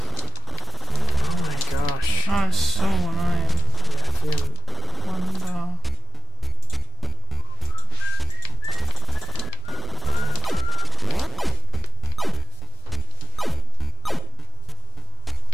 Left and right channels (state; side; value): normal; both; correlation 0.75